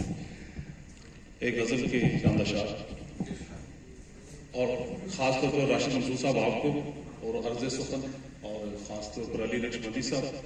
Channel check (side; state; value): both; identical; correlation 1.00